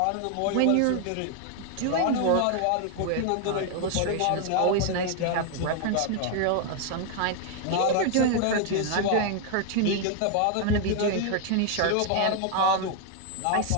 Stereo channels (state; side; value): different; both; correlation 0.00